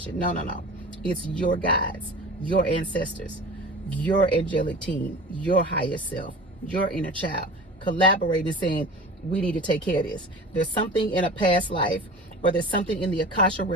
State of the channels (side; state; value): both; normal; correlation 0.37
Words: No. It's your guides, your ancestors, your angelic team, your higher self, your inner child, collaborating, saying, we need to take care of this. There's something in a past life, or there's something in the Akasha